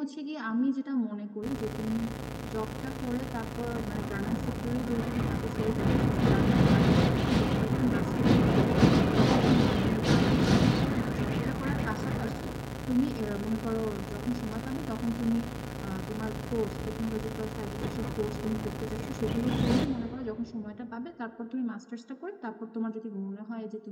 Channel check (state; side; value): identical; both; correlation 1.00